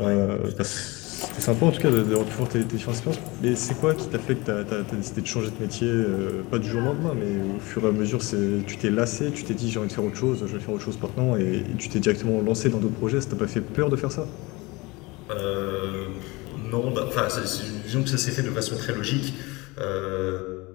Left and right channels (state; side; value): quieter; right; 23.8 dB